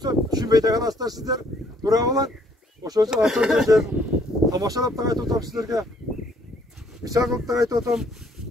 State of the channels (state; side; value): normal; both; correlation 0.64